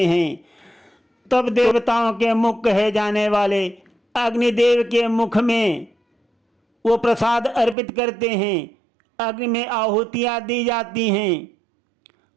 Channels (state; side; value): drops out; left; at 7.8 s